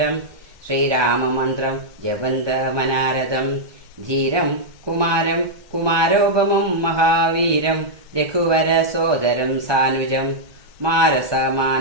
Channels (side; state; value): left; late; 1.2 ms